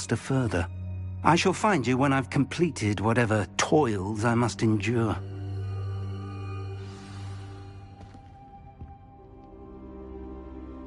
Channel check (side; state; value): both; identical; correlation 1.00